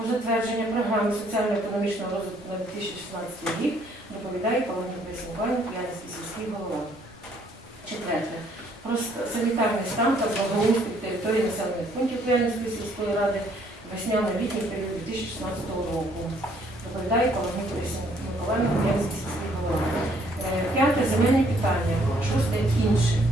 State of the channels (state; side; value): normal; both; correlation 0.65